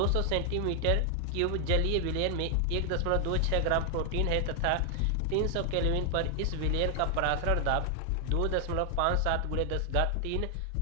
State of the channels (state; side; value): different; both; correlation 0.00